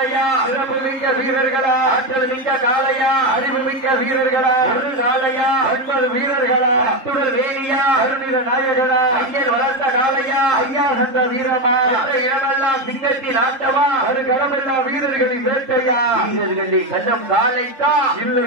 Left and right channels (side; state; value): left; late; 3.8 ms